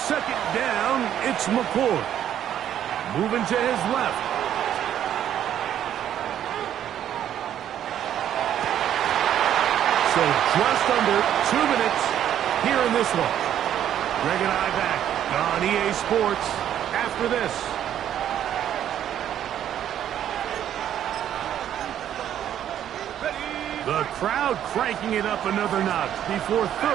down, it's McCoy. Moving to his left. So just under 2 minutes here in this one. Greg and I back on EA Sports after this. The crowd cranking it up another notch before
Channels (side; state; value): left; quieter; 10.5 dB